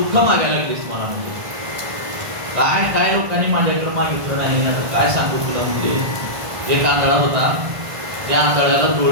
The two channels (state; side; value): late; left; 1.5 ms